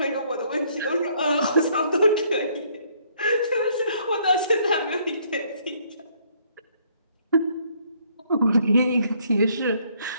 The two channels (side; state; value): both; inverted; correlation -0.66